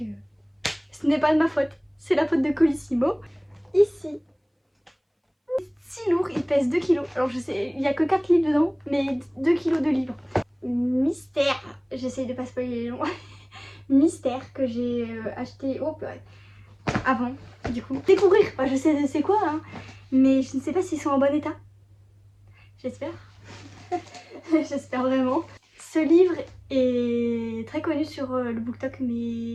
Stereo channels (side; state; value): both; identical; correlation 1.00